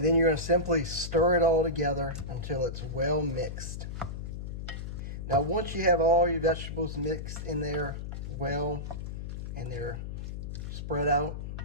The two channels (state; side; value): noise; left; hum, 6 dB below the sound